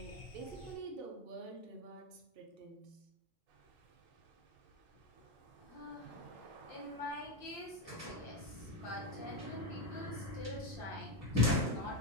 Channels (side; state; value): both; normal; correlation 0.11